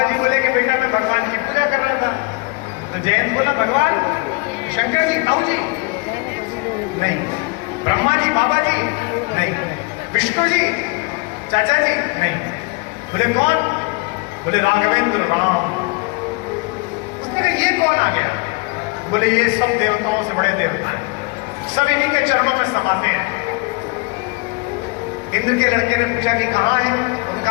जी बोले कि बेटा मैं भगवान की पूजा कर रहा था। तो जयंत बोला भगवान? शंकर जी, ताऊ जी? नहीं। ब्रह्मा जी, बाबा जी? नहीं। विष्णु जी, चाचा जी? नहीं। बोले कौन? बोले राघवेंद्र, राम। उसने कहा ये कौन आ गया? बोले ये सब देवताओं से बड़े देवता हैं, सब इन्हीं के चरणों में समाते हैं। इंद्र के लड़के ने पूछा कि कहां है,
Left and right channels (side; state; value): right; quieter; 28.2 dB